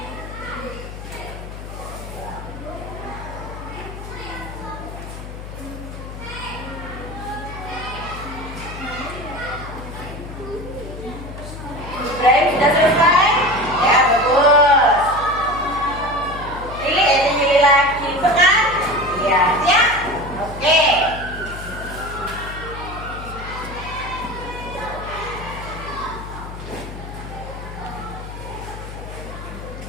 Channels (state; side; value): noise; left; hum, 11 dB below the sound